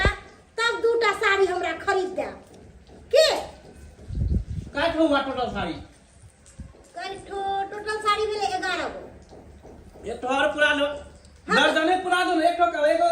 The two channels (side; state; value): both; identical; correlation 1.00